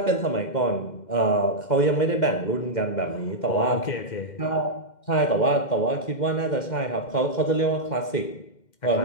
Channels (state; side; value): late; right; 2.1 ms